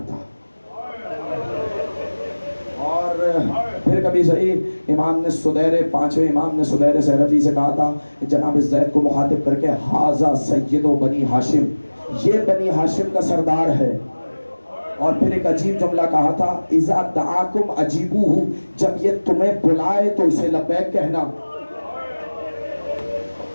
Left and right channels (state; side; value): inverted; both; correlation -1.00